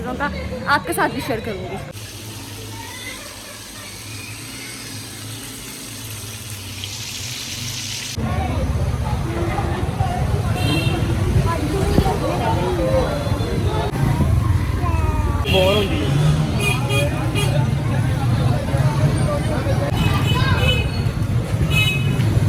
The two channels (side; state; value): both; identical; correlation 1.00